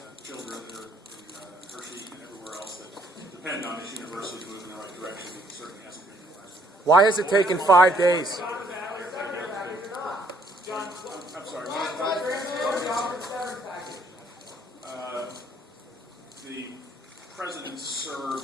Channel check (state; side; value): normal; both; correlation 0.65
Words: children that are in Hershey and everywhere else that depend on this university to move in the right direction. It certainly hasn't been in the last. Why has it taken 5 days? I'm sorry. The president